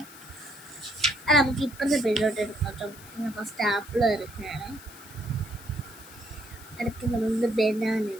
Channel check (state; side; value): noise; left; hiss, 19 dB below the sound